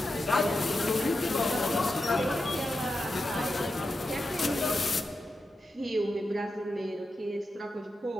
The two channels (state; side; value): normal; both; correlation 0.89